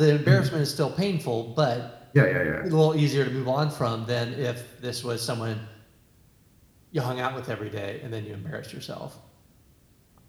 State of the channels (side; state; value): both; identical; correlation 1.00